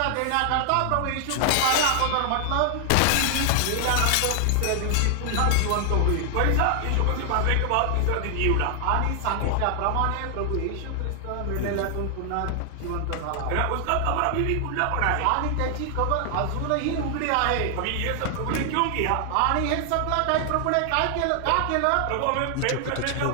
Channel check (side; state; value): both; different; correlation 0.00